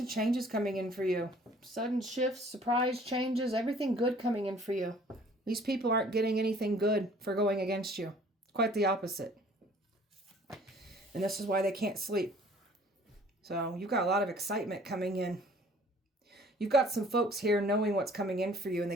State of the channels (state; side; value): normal; both; correlation 0.54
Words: changes coming in for you. Sudden shifts, surprise changes, everything good coming in for you. These people aren't getting anything good for going against you. Quite the opposite. And this is why they can't sleep. So you've got a lot of excitement coming in. You've got some folks here knowing what's coming in for you and